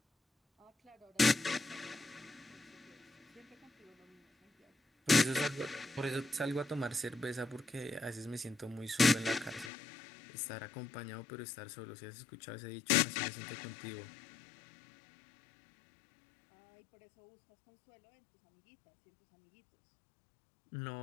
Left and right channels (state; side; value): drops out; right; at 9.7 s